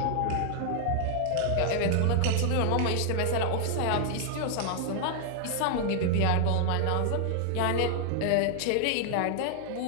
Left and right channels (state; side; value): different; both; correlation 0.00